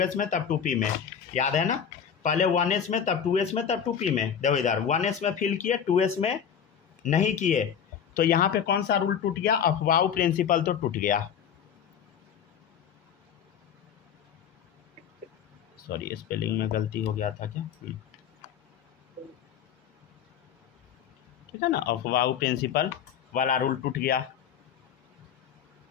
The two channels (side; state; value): right; quieter; 8.0 dB